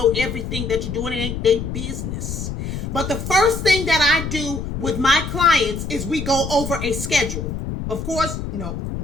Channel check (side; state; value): left; noise; rumble, 5 dB below the sound